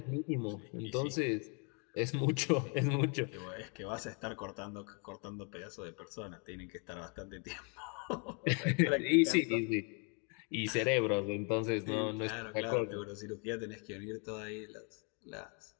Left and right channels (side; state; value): right; quieter; 36.5 dB